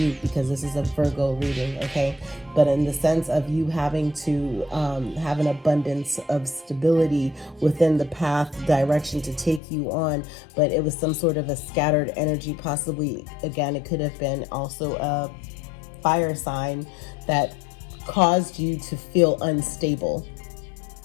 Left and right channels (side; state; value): right; drops out; at 9.6 s